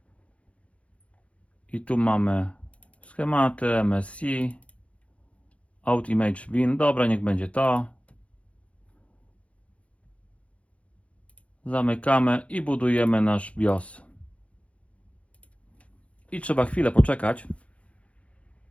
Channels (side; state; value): right; late; 0.063 ms